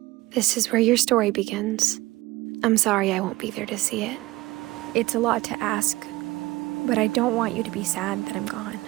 This is where your story begins. I'm sorry I won't be there to see it. It's a lot to ask, but I don't want you to be sad that I'm gone.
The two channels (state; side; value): quieter; left; 19.0 dB